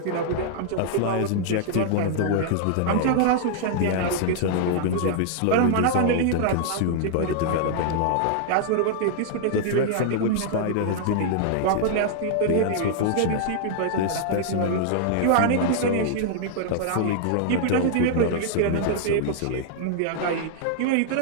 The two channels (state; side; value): different; both; correlation -0.01